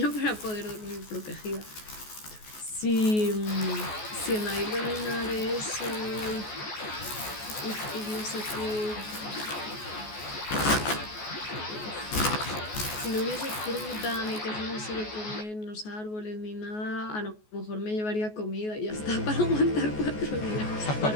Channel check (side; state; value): right; late; 14 ms